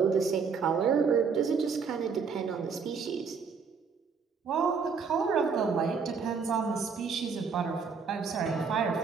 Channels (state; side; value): quieter; left; 5.6 dB